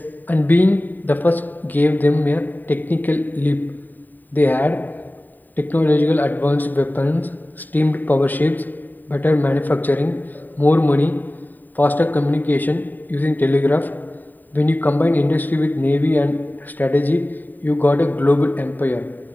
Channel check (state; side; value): late; right; 0.088 ms